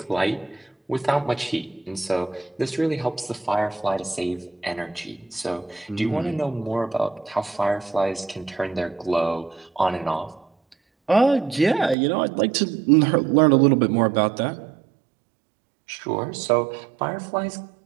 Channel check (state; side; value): drops out; left; at 12.0 s